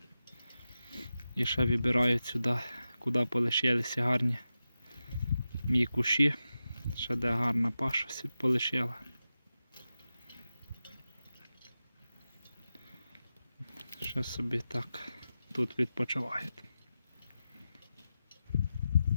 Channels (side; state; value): both; inverted; correlation -0.92